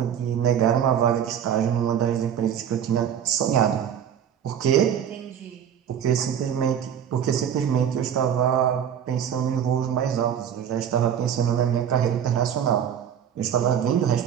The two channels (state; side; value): quieter; left; 8.9 dB